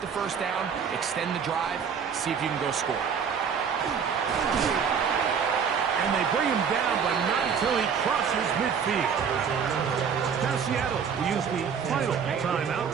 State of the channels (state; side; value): quieter; left; 6.8 dB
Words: the first down, extend the drive, see if you can go score. And they bring him down, but not until he crosses midfield. Now Seattle will use the final timeout